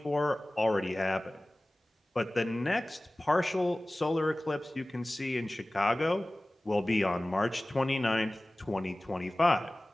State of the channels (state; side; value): normal; both; correlation 0.98